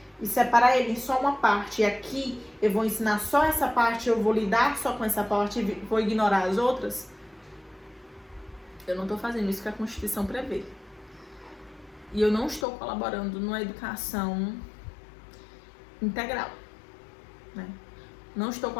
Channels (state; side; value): drops out; right; at 12.7 s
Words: e separar ele em só uma parte, e aqui eu vou ensinar só essa parte, eu vou lidar só com essa parte e vou ignorar as outras, eu não estou fazendo isso que a Constituição prevê. E eu não estou colaborando numa educação integral, né? Não estou